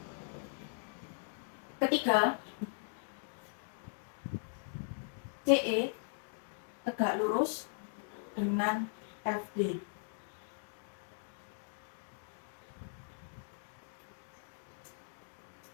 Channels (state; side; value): silent; right; digital silence